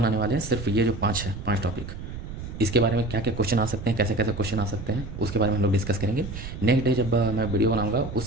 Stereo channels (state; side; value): noise; right; rumble, 9 dB below the sound